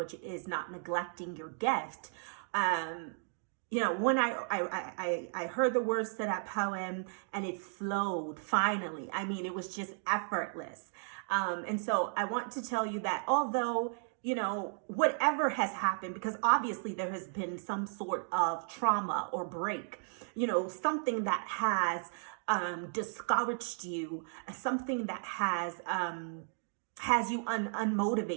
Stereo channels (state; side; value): silent; left; 55 dB below the other